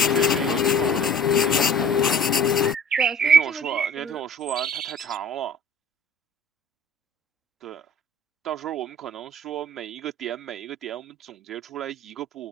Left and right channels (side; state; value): both; normal; correlation 0.46